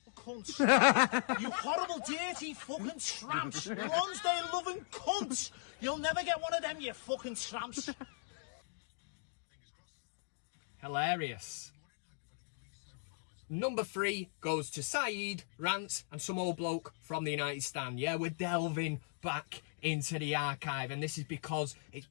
Cunts. You horrible, dirty fucking tramps. Lonsdale loving cunts. You'll never get one of them, you fucking tramps. Hilarious. Number 3 goes to Saeed, Rants, and some old bloke from the United Stand. Yeah, we're delving back into the archive, and this is because it's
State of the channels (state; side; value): silent; right; digital silence